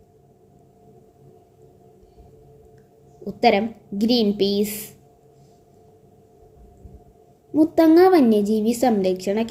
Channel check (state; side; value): identical; both; correlation 1.00